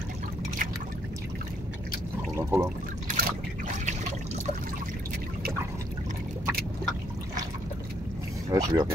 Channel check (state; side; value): normal; both; correlation 0.70